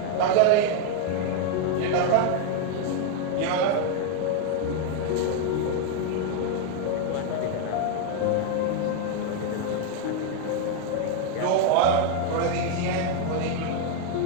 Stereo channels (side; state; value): both; different; correlation 0.00